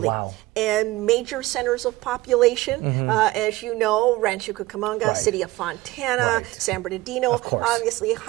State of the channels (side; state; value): left; quieter; 19.1 dB